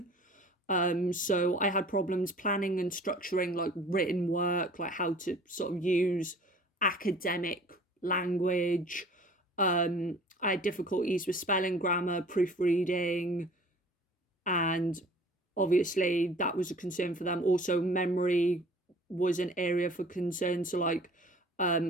So I had problems planning and structuring like written work, like how to sort of use academic language. I had difficulties with spelling, grammar, proofreading, and obviously that was a concern for them. Also, memory was an area for concern. So like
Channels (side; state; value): both; normal; correlation 0.48